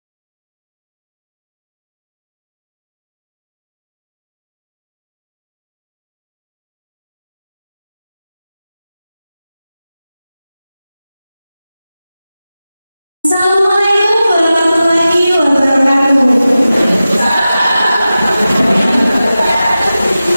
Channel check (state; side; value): inverted; both; correlation -0.94